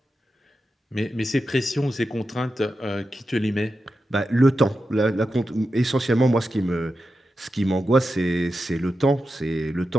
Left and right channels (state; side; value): normal; both; correlation 0.90